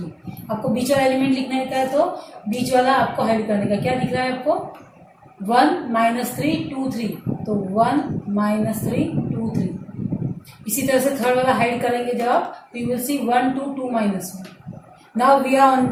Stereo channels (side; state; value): both; identical; correlation 1.00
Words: आपको बीच वाला एलिमेंट लिखने का है, तो बीच वाला आपको हाइड करने का. क्या दिख रहा है आपको 1 -3 2 3. तो 1 -3 2 3. इसी तरह से थर्ड वाला हाइड करेंगे जब आप, तो you will see 1 2 2 -1. Now we are on